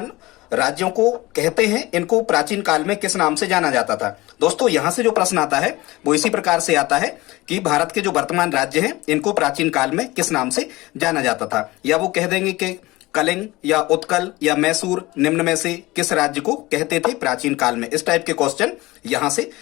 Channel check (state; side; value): quieter; right; 20.1 dB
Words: राज्यों को कहते हैं इनको प्राचीन काल में किस नाम से जाना जाता था। दोस्तों, यहां से जो प्रश्न आता है वो इसी प्रकार से आता है कि भारत के जो वर्तमान राज्य हैं इनको प्राचीन काल में किस नाम से जाना जाता था, या वो कह देंगे कि कलिंग या उत्कल या मैसूर निम्न में से किस राज्य को कहते थे प्राचीन काल में। इस टाइप के क्वेश्चन यहां से